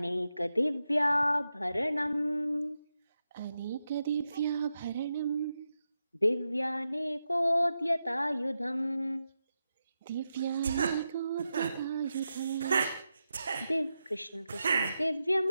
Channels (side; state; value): both; inverted; correlation -0.89